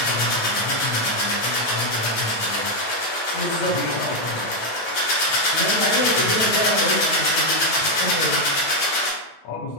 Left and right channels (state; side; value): late; right; 9.0 ms